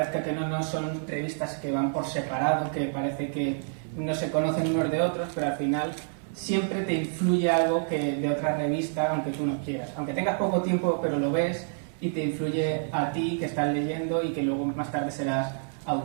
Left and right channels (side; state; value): left; silent; 59 dB below the other